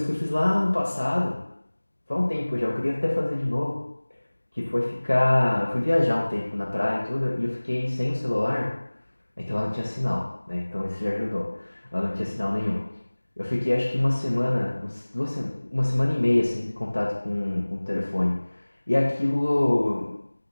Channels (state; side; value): inverted; both; correlation -1.00